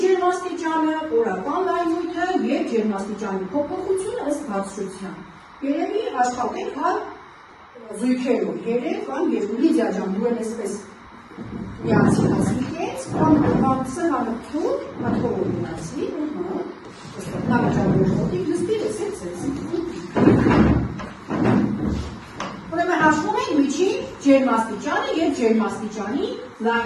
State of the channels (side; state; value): both; identical; correlation 1.00